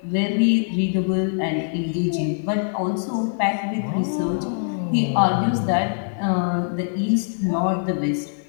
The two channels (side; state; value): right; silent; digital silence